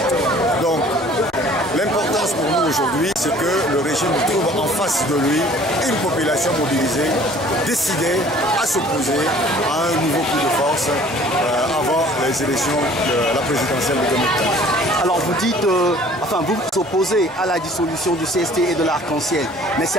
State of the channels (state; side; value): normal; both; correlation 0.52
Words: Donc, l'importance pour nous aujourd'hui, c'est que le régime trouve en face de lui une population mobilisée, décidée à s'opposer à un nouveau coup de force avant les élections de la présidentielle de 2015. Alors vous dites, vous vous opposez à la dissolution du CST et de l'Arc-en-Ciel, mais